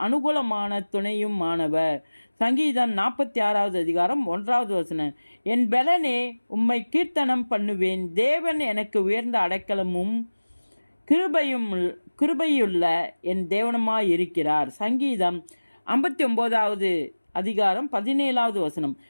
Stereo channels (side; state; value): both; inverted; correlation -1.00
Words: அனுகூலமான துணையும் ஆனவர். சங்கீதம் 46வது அதிகாரம் 1வது வசனம். என் பெலனே, உம்மை கீர்த்தனம் பண்ணுவேன். தேவன் எனக்கு உயர்ந்த அடைக்கலமும் கிருபையுள்ள என் தேவனுமாயிருக்கிறார். சங்கீதம் 59வது அதிகாரம் 17வது வசனம்.